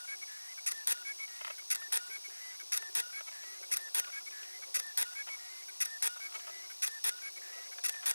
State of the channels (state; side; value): inverted; both; correlation -1.00